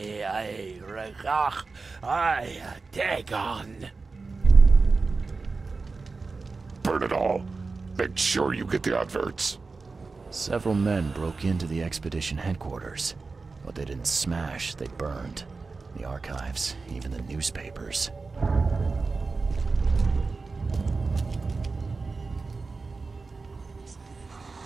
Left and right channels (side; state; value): left; quieter; 4.1 dB